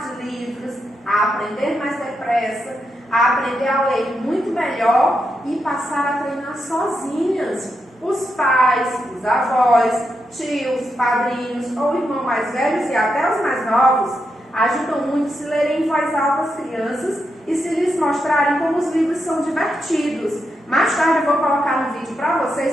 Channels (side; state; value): both; normal; correlation 0.84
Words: de livros, a aprender mais depressa, a aprender a ler muito melhor e passar a treinar sozinhas. Os pais, os avós, tios, padrinhos ou irmãos mais velhos e até os mais novos ajudam muito se lerem em voz alta as crianças e se lhes mostrarem como os livros são divertidos. Mais tarde eu vou colocar um vídeo para